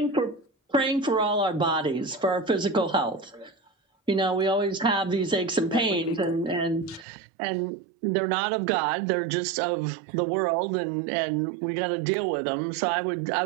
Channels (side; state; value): left; drops out; at 7.1 s